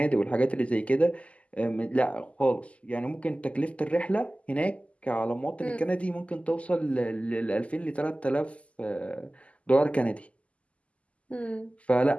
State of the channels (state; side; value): late; right; 0.063 ms